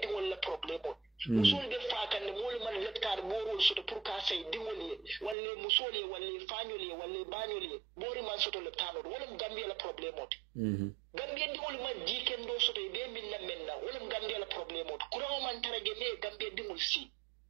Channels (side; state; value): left; drops out; at 5.4 s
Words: wala problem o musole de fa kan mole man letkar boro so to pour ka say di wala musole wala fanyole wala banyole bori man so to le tano wala mu Gambia la problem o Gambia di wala man jiken do so to be min la menna wala mu Gambia la problem o kuro man tarage me Gambia di mul si